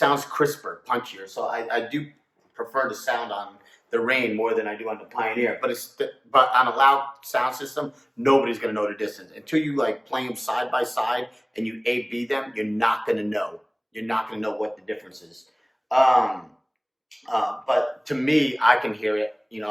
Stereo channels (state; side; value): identical; both; correlation 1.00